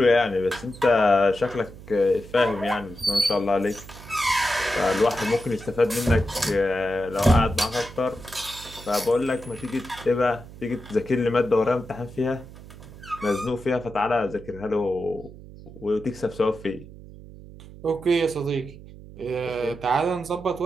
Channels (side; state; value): right; noise; hum, 17 dB below the sound